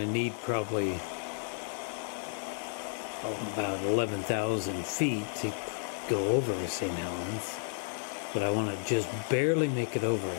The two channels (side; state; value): right; silent; digital silence